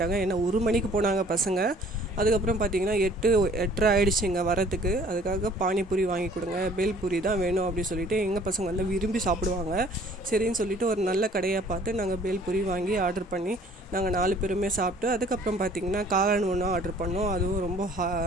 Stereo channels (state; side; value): normal; both; correlation 0.55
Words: ஏன்னா 1 மணிக்கு போனாங்க பசங்க. அதுக்கப்புறம் பார்த்திங்கன்னா 8:30 ஆகிடுச்சிங்க வரத்துக்கு. அதுக்காக பானிபூரி வாங்கி கொடுங்க, பேல்பூரி தான் வேணும் அப்படின்னு சொல்லிட்டு எங்கள் பசங்க வந்து விரும்பி சாப்பிடுவாங்க. சரின்னு சொல்லிட்டு ஒரு நல்ல கடையாக பார்த்து நாங்கள் பேல்பூரி வாங்கி ஆர்டர் பண்ணி நாங்கள் 4 பேருமே சாப்பிட்டு, அதுக்கப்புறம் பார்த்திங்கன்னா காளான் ஒன்று ஆர்டர் பண்ணோம். அதுவும் ரொம்ப